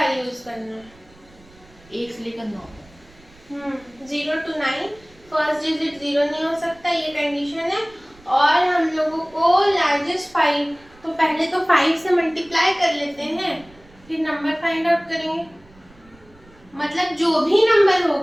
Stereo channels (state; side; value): noise; right; rumble, 27 dB below the sound